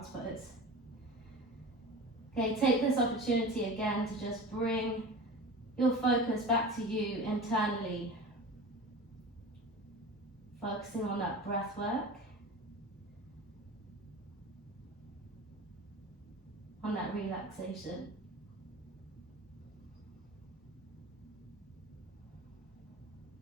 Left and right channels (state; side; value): normal; both; correlation 0.34